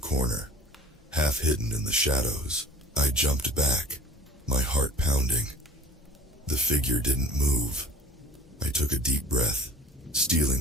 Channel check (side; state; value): both; normal; correlation 0.45